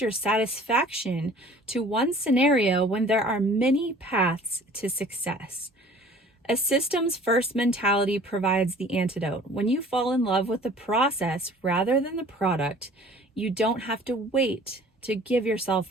your satisfaction to one scenario when there are many paths to success. A systems first mentality provides the antidote. When you fall in love with the process rather than the product, you don't have to wait to give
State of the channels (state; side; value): normal; both; correlation 0.49